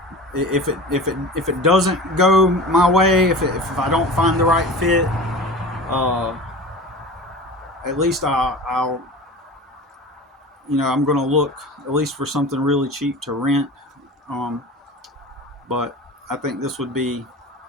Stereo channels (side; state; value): both; normal; correlation 0.35